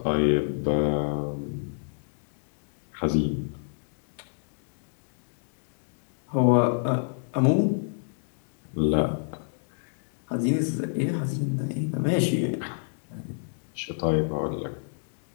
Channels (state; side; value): silent; right; digital silence